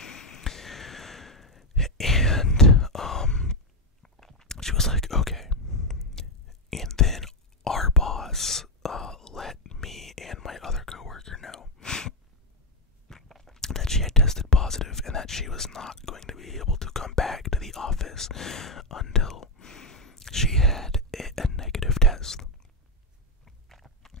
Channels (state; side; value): normal; both; correlation 0.05